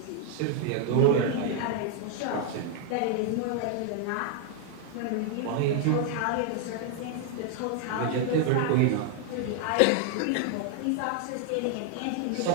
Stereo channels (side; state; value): both; different; correlation 0.00